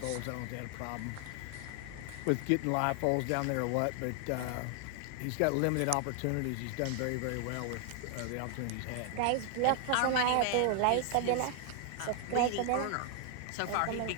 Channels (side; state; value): both; different; correlation 0.00